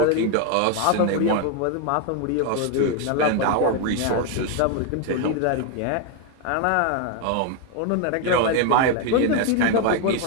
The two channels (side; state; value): both; different; correlation 0.01